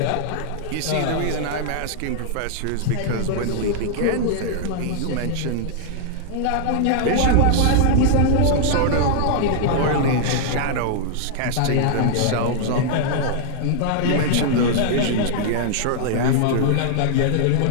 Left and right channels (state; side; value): different; both; correlation -0.01